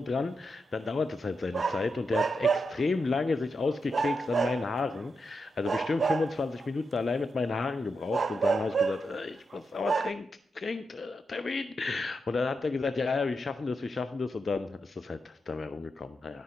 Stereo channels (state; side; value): normal; both; correlation 0.86